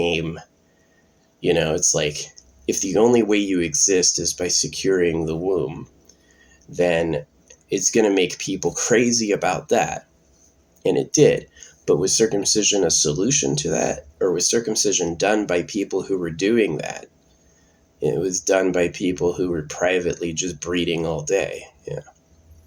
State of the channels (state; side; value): identical; both; correlation 1.00